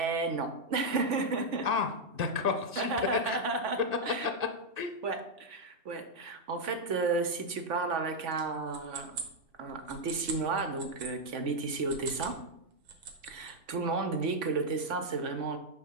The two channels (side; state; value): left; late; 3.5 ms